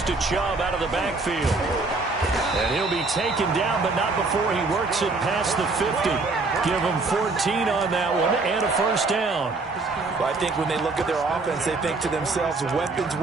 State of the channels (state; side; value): quieter; left; 3.6 dB